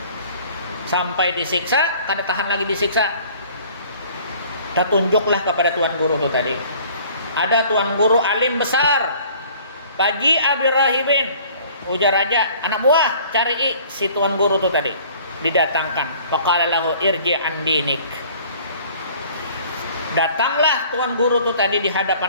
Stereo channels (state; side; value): inverted; both; correlation -0.52